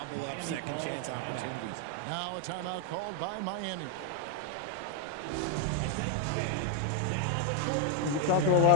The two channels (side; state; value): both; different; correlation 0.01